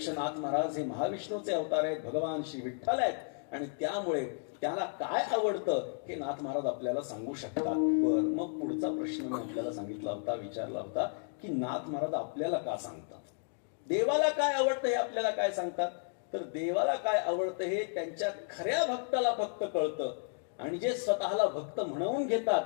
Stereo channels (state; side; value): silent; right; 56 dB below the other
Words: नाथ महाराज हे महाविष्णूचे अवतार आहेत, भगवान श्री विठ्ठल आहेत. आणि त्यामुळे त्याला काय आवडतं हे नाथ महाराज आपल्याला सांगू शकतात. मग पुढचा प्रश्न मी आपल्याला सांगितला होता, विचारला होता की नाथ महाराज आपल्याला का सांगतात? देवाला काय आवडतं हे आपल्याला काय सांगतात? तर देवाला काय आवडतं हे त्यांच्या खऱ्या भक्ताला फक्त कळतं. आणि जे स्वतःला भक्त म्हणवून घेतात